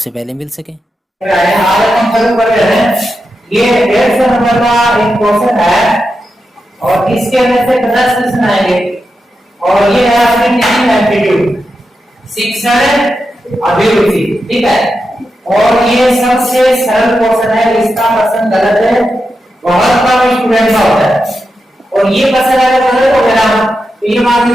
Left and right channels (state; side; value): normal; both; correlation 0.88